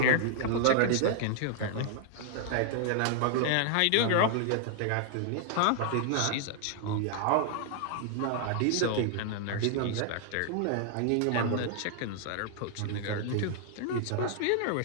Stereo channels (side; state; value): both; different; correlation 0.00